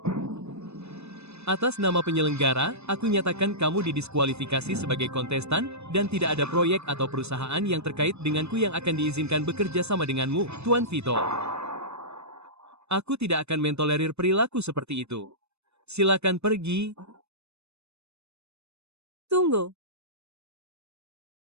Atas nama penyelenggara, aku nyatakan kamu didiskualifikasi sebagai kontestan, dan tidak ada proyek atau perusahaan yang terkait denganku yang akan diizinkan bekerja sama denganmu, Tuan Vito. Aku tidak akan mentolerir perilaku seperti itu. Silakan pergi. Tunggu.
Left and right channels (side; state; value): left; late; 0.80 ms